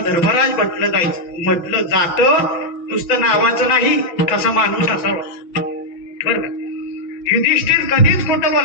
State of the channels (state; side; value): late; right; 5.9 ms